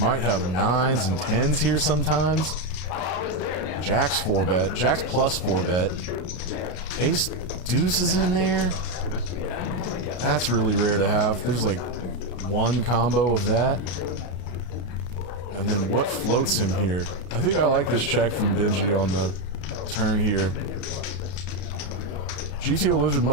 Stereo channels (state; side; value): late; right; 33 ms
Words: have 9s and 10s here sometimes. Jack's 4-bet. Jack's plus 4-bet. Ace deuce is in there. That's really rare to have. There's like one combo of that. And then what floats him here? I think I like this check from Benji on the turn here. GTO Lizard